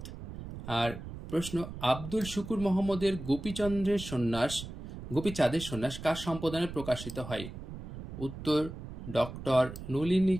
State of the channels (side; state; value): right; noise; rumble, 10 dB below the sound